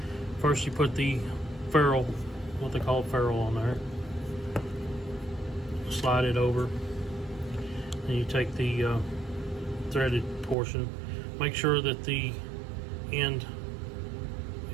First you put the ferrule, what they call ferrule, on there. Slide it over, and you take the threaded portion. Make sure that the end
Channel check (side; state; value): left; drops out; at 10.6 s